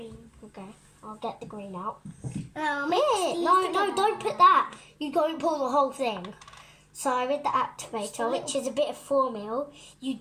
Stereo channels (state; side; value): identical; both; correlation 1.00